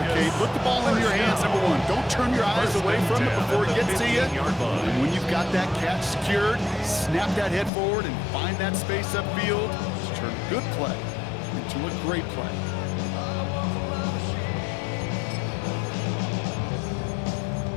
Kate. Put the ball in your hands, number one. Don't turn your eyes away from it before it gets to you. And when you've got that catch secured, snap that head forward and find that space upfield. Just turn a good play into a great play.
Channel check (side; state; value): right; drops out; at 7.7 s